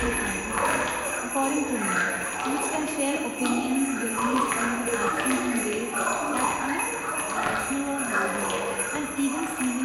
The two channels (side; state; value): both; identical; correlation 1.00